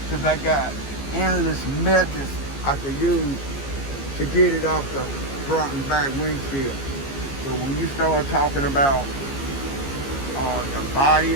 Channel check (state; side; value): late; right; 15 ms